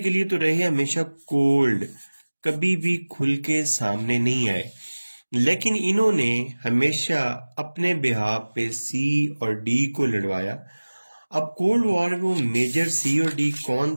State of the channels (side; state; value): both; inverted; correlation -1.00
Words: लिए तो रहे हमेशा कोल्ड, कभी भी खुल के सामने नहीं आए, लेकिन इन्होंने हमेशा अपने बिहाफ पे सी और डी को लड़वाया। अब कोल्ड वॉर में वो मेजर सी और डी